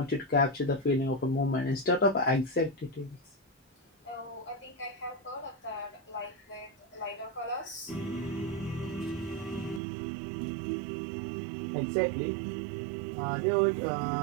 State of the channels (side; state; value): left; drops out; at 9.8 s